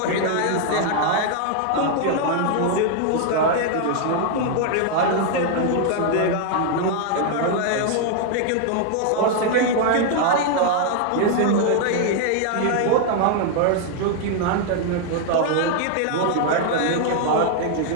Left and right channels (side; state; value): both; different; correlation 0.00